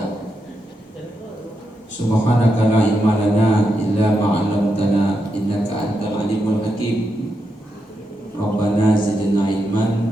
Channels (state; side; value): normal; both; correlation 0.84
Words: Subhanaka la ilma lana illa ma 'allamtana innaka antal alimul hakim. Rabbana zidna